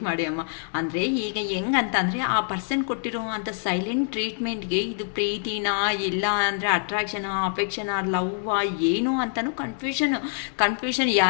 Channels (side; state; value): right; silent; 61 dB below the other